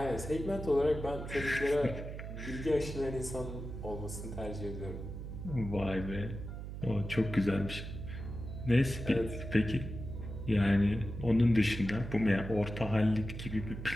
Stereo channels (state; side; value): noise; right; hum, 8 dB below the sound